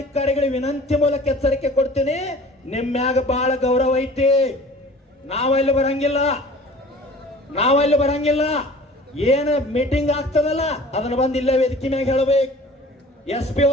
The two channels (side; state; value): both; normal; correlation 0.45